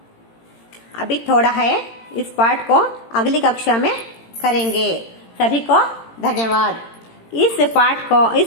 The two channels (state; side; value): late; right; 18 ms